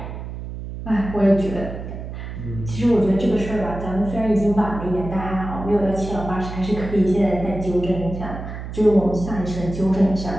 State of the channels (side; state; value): right; noise; hum, 9 dB below the sound